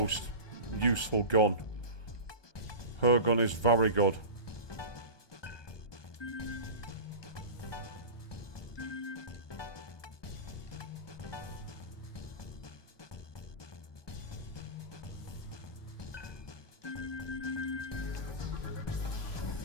useful gun. Her gun is very good.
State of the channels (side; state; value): right; late; 1.2 ms